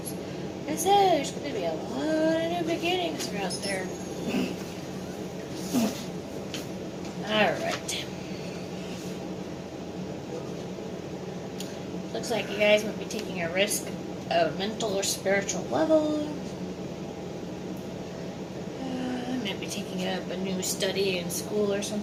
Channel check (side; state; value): both; identical; correlation 1.00